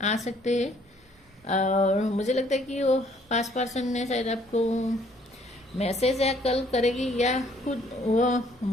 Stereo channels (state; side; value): normal; both; correlation 0.63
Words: आ सकते हैं, और मुझे लगता है कि वो पास्ट पर्सन ने शायद आपको मैसेज या कॉल करेगी, या खुद वो,